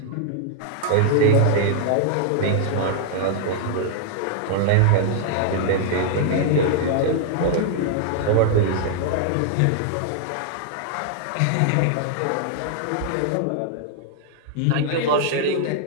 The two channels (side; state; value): both; different; correlation -0.01